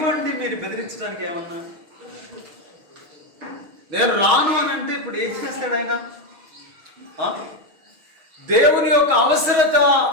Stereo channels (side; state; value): left; late; 6.3 ms